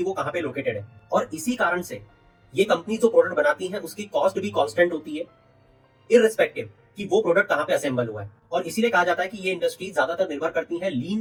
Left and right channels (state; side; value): identical; both; correlation 1.00